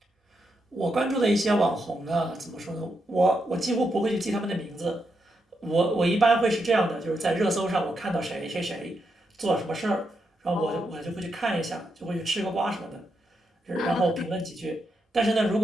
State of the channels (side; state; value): both; normal; correlation 0.83